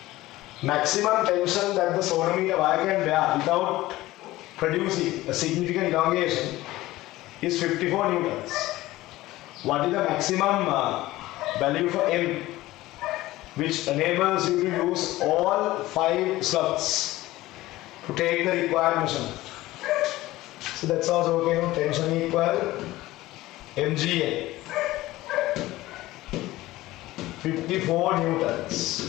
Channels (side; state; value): right; quieter; 17.4 dB